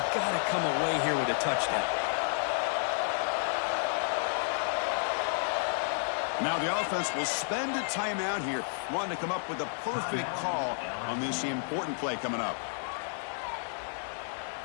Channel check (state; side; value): silent; right; digital silence